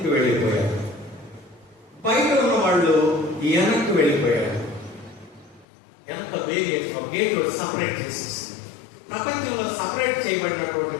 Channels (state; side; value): drops out; right; at 5.7 s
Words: వెళ్ళిపోయారు, బయట ఉన్న వాళ్ళు వెనక్కి వెళ్ళిపోయారు. ఎంత వేరియేషన్! గేట్ సపరేట్ చేసేసి ప్రపంచంలో సపరేట్ చేయబడినటువంటి